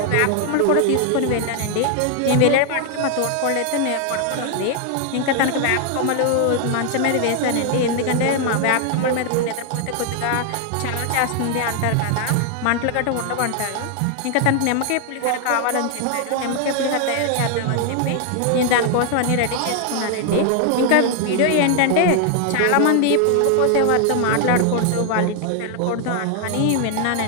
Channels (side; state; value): both; different; correlation 0.00